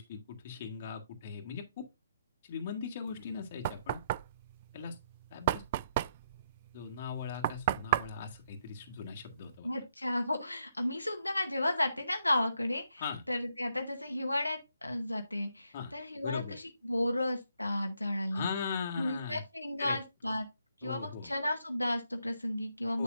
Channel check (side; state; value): both; inverted; correlation -0.77